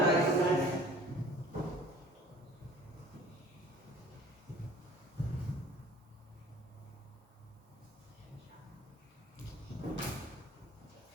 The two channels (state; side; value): normal; both; correlation 0.49